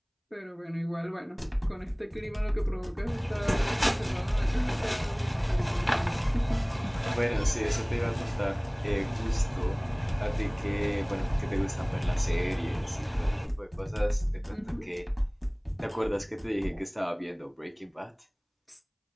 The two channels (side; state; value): both; identical; correlation 1.00